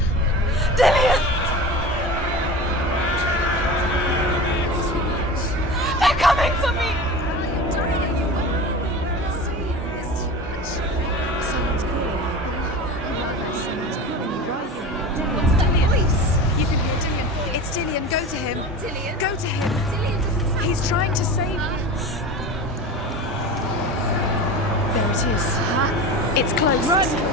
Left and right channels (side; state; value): both; normal; correlation 0.31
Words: Dillian! They're coming for me! Someone's calling you. Someone's calling you right here. What's that voice? You can hear Dillian. It's Dillian. Go to him. Dillian? Go to him. Dillian doesn't sound. He's trying to save you. There it is. Huh? It's close. Run